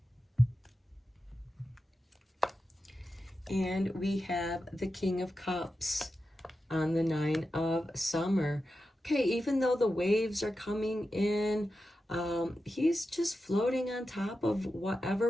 And we have the King of Cups on the Nine of Summer. Okay, even though the waves are coming in, he's just floating on top of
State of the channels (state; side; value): normal; both; correlation 0.91